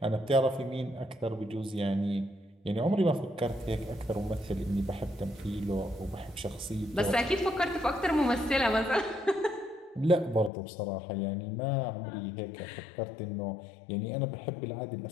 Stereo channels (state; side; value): drops out; right; at 10.5 s